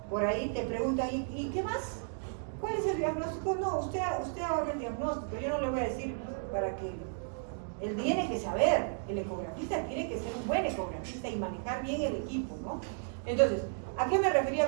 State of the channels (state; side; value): silent; left; digital silence